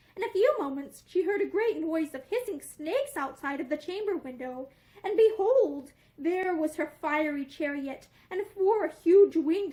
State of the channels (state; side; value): identical; both; correlation 1.00